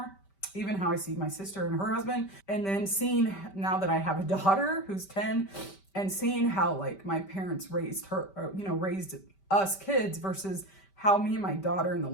even how I see my sister and her husband, and then seeing now that I have a daughter who's 10, and seeing how like my parents raised her, or, you know, raised us kids versus how me and my daughter and the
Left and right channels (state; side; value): late; right; 5.1 ms